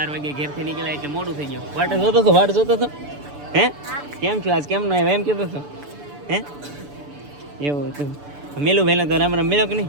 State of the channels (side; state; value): left; late; 6.9 ms